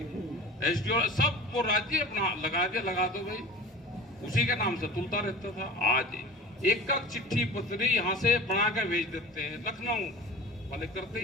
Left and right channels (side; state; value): both; normal; correlation 0.38